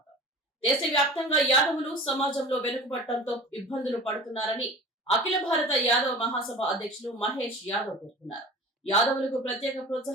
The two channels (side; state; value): both; normal; correlation 0.38